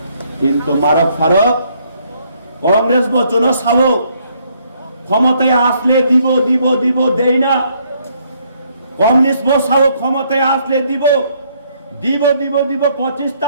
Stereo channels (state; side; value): inverted; both; correlation -0.69